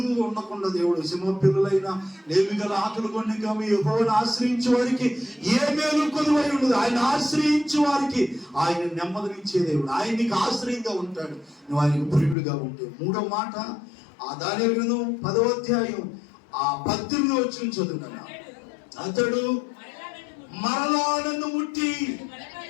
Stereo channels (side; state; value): right; drops out; at 12.4 s